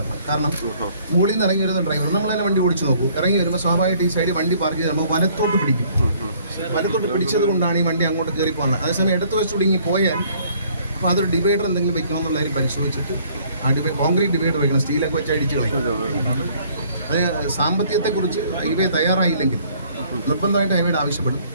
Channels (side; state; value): both; inverted; correlation -0.60